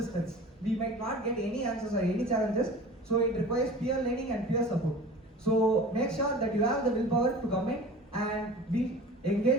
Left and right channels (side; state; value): both; normal; correlation 0.39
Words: We might not get any answers or any challenges, so it requires peer learning and peer support. So make sure that you have the willpower to come in and be